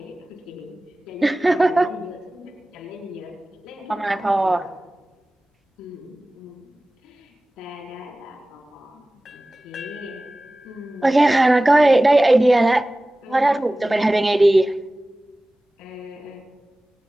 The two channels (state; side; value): normal; both; correlation 0.97